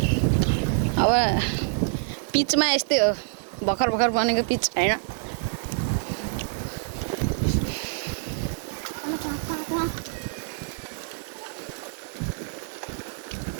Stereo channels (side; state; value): left; silent; digital silence